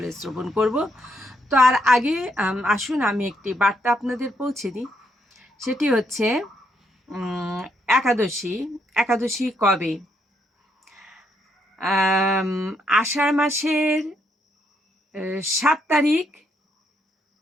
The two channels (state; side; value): normal; both; correlation 0.75